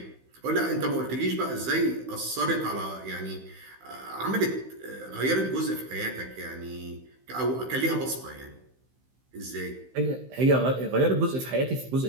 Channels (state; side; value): late; left; 15 ms